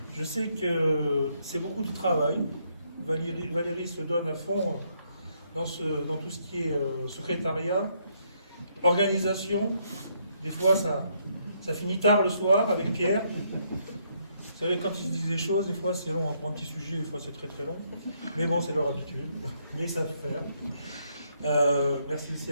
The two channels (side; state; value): both; inverted; correlation -0.73